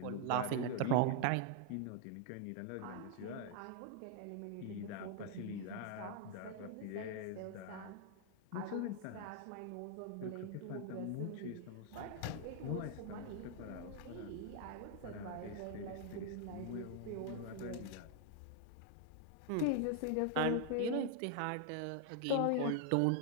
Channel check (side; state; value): both; different; correlation 0.00